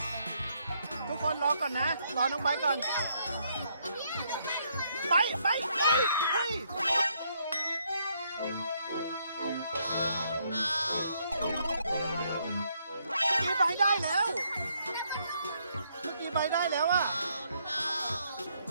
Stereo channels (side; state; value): both; inverted; correlation -0.72